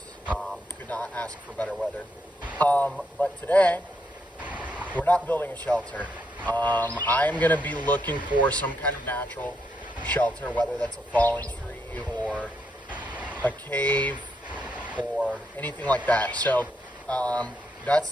Could not ask for better weather. But today, we're not building a shelter. I'm going to be looking for some kind of natural shelter, whether that's a fallen tree or a cave or anything like that. So that's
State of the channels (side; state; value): both; normal; correlation 0.79